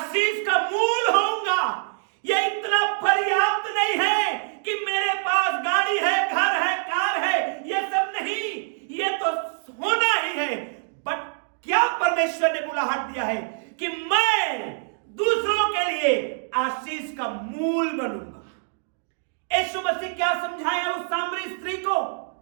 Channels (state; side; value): silent; left; digital silence